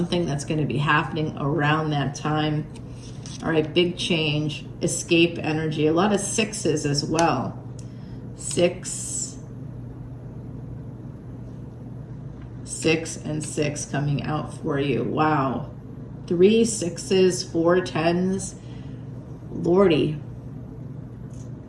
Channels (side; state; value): both; identical; correlation 1.00